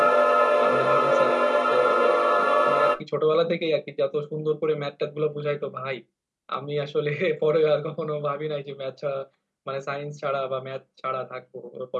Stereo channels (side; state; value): both; identical; correlation 1.00